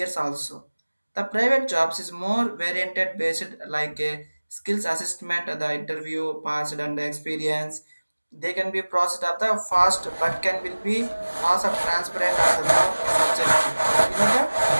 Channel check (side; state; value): both; inverted; correlation -1.00